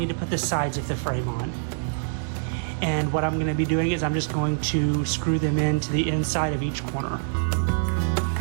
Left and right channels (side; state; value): left; silent; digital silence